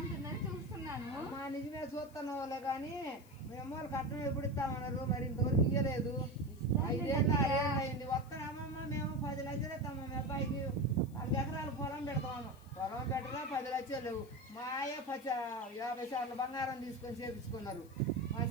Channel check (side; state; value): left; noise; hiss, 26 dB below the sound